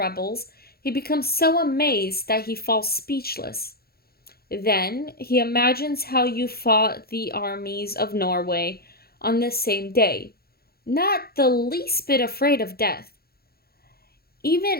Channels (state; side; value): late; right; 0.45 ms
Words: he becomes so amazed that he falls speechless. Then he imagines how you fought the armies of Norway on the same day, not the least bit afraid of death,